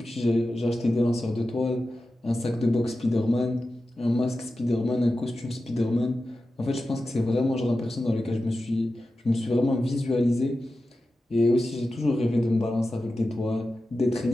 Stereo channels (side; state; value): both; normal; correlation 0.93